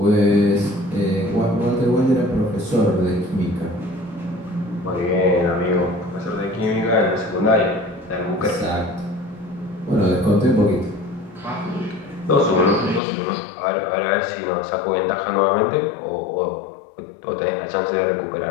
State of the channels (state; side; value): drops out; right; at 13.0 s